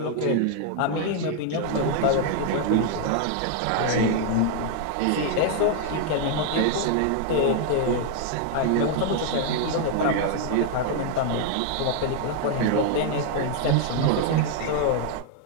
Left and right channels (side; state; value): both; different; correlation 0.00